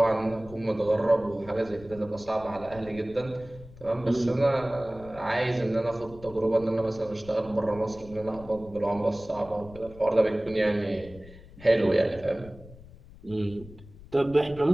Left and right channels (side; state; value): left; noise; rumble, 19 dB below the sound